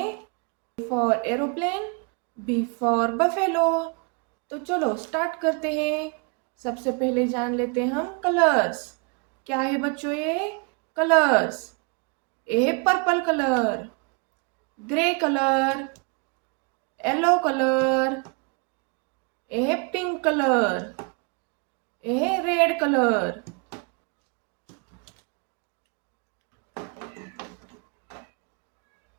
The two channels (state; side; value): quieter; left; 34.7 dB